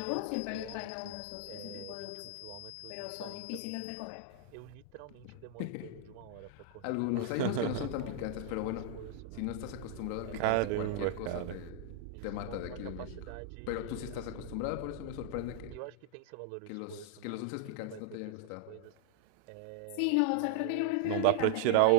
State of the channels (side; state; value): both; different; correlation 0.00